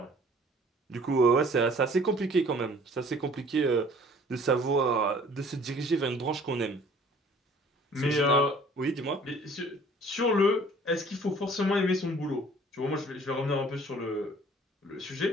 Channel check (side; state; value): both; normal; correlation 0.53